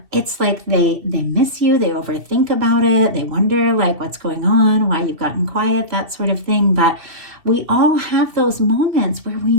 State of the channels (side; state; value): left; late; 2.9 ms